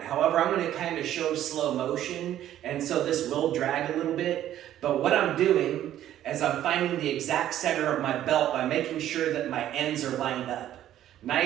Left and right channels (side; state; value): left; quieter; 12.1 dB